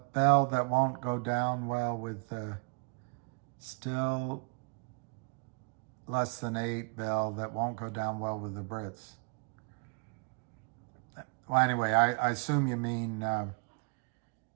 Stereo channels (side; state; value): left; quieter; 31.8 dB